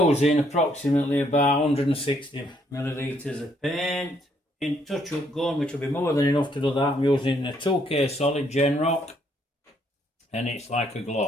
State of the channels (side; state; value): both; normal; correlation 0.70